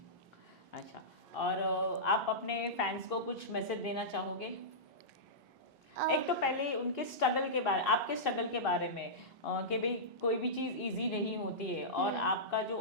अच्छा, और आप अपने फैंस को कुछ मैसेज देना चाहोगे? एक तो पहले उनके स्ट्रगल के बारे, आपके स्ट्रगल के बारे में कि भाई कोई भी चीज़ इजी नहीं होती है और आपका जो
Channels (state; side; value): normal; both; correlation -0.15